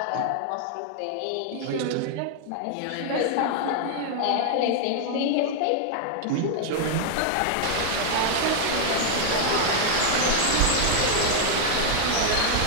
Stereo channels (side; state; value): both; different; correlation 0.00